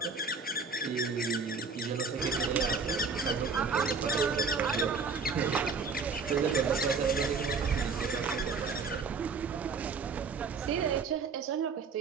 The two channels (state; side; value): quieter; left; 4.8 dB